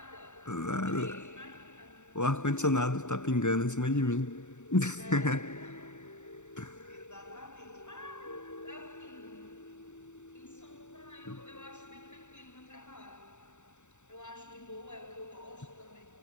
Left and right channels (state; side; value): late; right; 0.84 ms